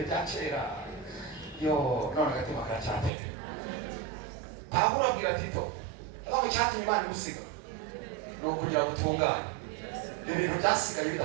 bya kera. Yo none agatima karacyatera. Pawulo abwira Tito aho cyatumye Imana imusiga ni ukugira ngo utungane ibintu byasigaye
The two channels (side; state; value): left; drops out; at 3.1 s